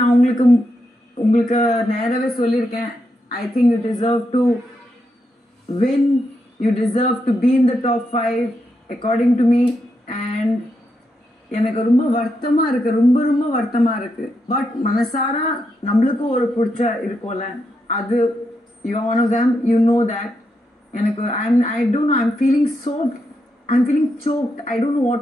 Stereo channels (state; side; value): normal; both; correlation 0.83